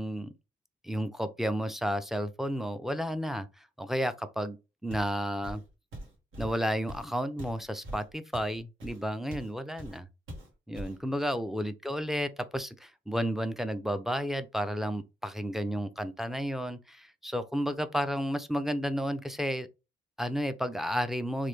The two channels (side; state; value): both; normal; correlation 0.89